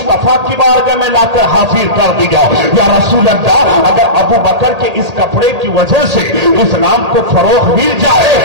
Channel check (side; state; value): left; late; 1.8 ms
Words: की बारगाह में लाकर हाजिर कर दिया। या रसूल रसूल अल्लाह, अगर अबू बकर के इस कपड़े की वजह से इस्लाम को फरोग मिल जाए,